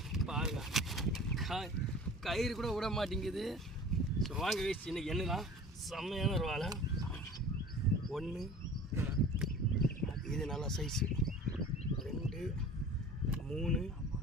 பாருங்க கயிறு கூட விட மாட்டேங்குது ஸோ வாங்க காய்ஸ் இன்னைக்கு என்னதான் செம்மையான ஒரு வாழை 1 இது நல்லா சைஸு 2 3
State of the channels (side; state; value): both; normal; correlation 0.42